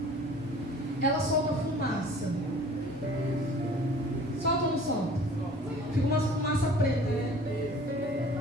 ela solta fumaça. Solta ou não solta? Fica uma fumaça preta, né?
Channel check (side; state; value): both; normal; correlation 0.47